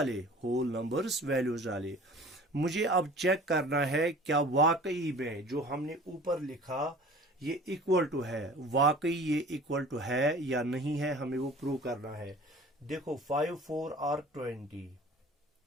होल नंबर्स वैल्यूज डाले। मुझे अब चेक करना है क्या वाकई में जो हमने ऊपर लिखा ये इक्वल टू है, वाकई ये इक्वल टू है या नहीं है, हमें वो प्रूव करना है। देखो 5 4 are 20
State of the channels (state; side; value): normal; both; correlation 0.45